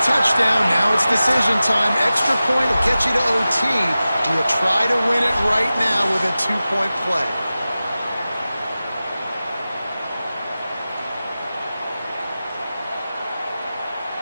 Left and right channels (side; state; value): both; inverted; correlation -0.95